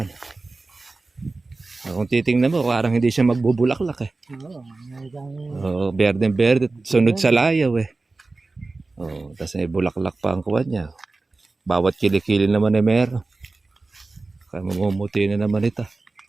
Kung titingnan mo, parang hindi siya magbubulaklak eh. Oo, berde. Sunod sa layaw eh. Oo, tapos may bulaklak pa ang kuwan niya. Bawat kilikili naman ay meron. Kaya mamumuti na naman ito.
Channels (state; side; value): quieter; left; 3.5 dB